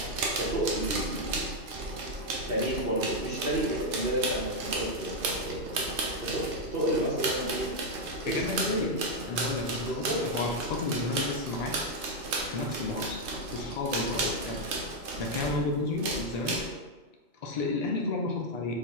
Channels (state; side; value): late; left; 3.3 ms